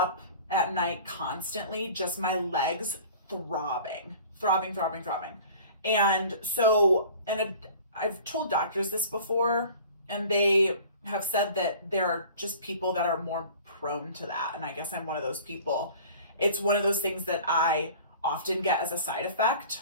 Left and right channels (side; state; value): both; inverted; correlation -0.45